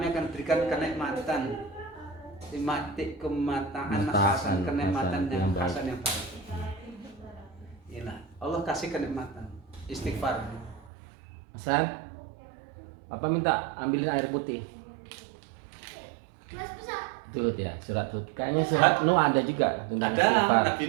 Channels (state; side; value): drops out; left; at 10.9 s